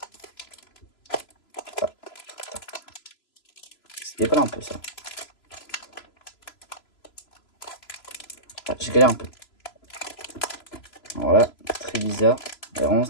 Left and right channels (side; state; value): right; late; 3.0 ms